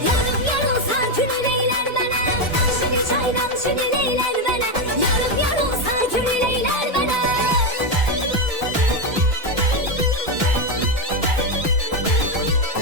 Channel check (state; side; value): normal; both; correlation 0.08